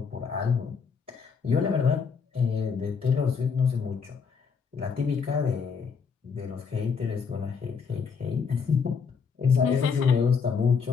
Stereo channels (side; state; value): right; quieter; 5.8 dB